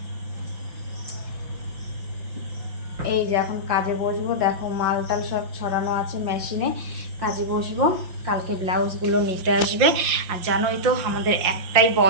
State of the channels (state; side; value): late; left; 5.7 ms